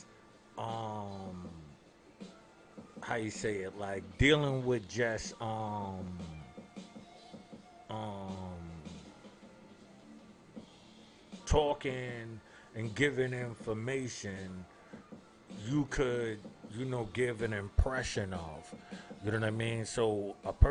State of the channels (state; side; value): identical; both; correlation 1.00